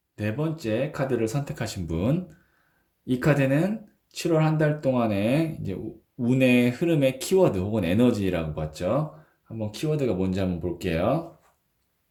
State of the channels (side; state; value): both; identical; correlation 1.00